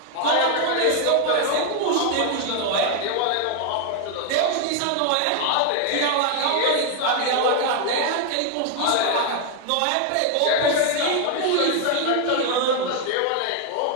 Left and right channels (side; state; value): both; different; correlation 0.00